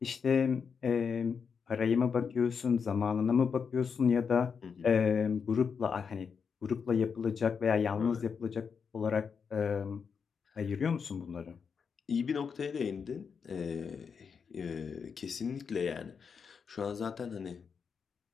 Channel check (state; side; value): quieter; right; 6.1 dB